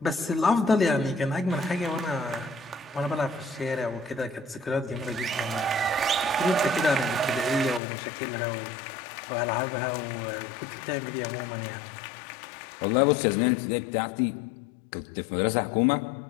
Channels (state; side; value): drops out; right; at 7.8 s